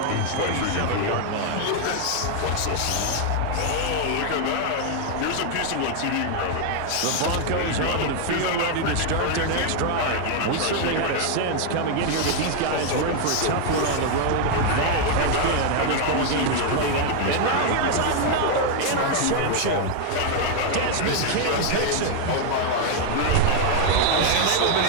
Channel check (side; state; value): both; different; correlation 0.00